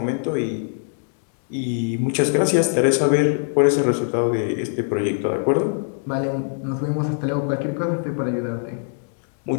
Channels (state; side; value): silent; right; digital silence